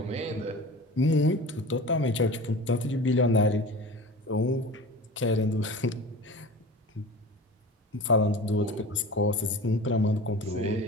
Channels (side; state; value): both; normal; correlation 0.35